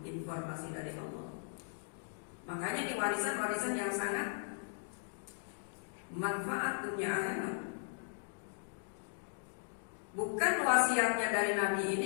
Informasi dari Allah. Makanya di warisan-warisan yang sangat manfaat dunia akhirat. Bukan wasiatnya dari Nabi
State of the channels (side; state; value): right; silent; digital silence